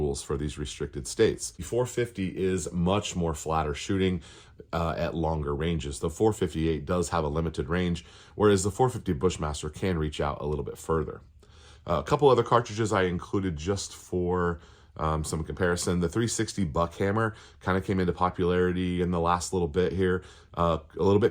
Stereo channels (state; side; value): identical; both; correlation 1.00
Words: for these restricted states. The 450 is much more flatter shooting at longer ranges. The 458 does have a limited range, whereas the 450 Bushmaster can reach out a little bit further. A couple other cartridges I included just for some comparison. The 360 Buckhammer kind of came into popularity in the last little bit here. A little